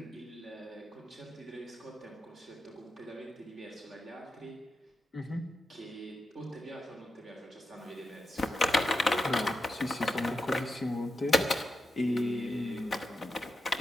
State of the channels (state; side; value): normal; both; correlation 0.88